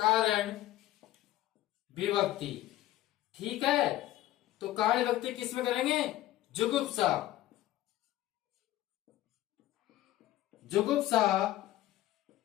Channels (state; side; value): quieter; right; 14.8 dB